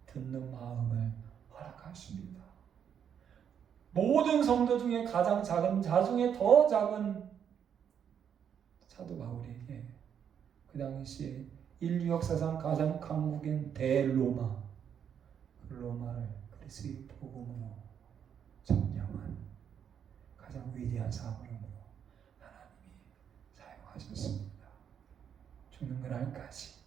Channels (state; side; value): quieter; left; 8.3 dB